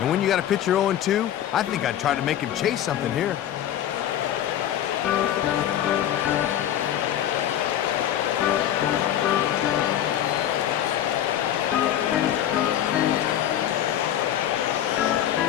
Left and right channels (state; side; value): quieter; right; 11.1 dB